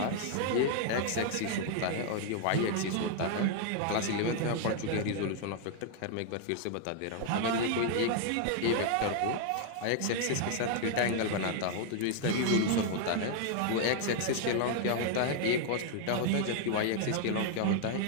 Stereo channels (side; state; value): both; different; correlation 0.00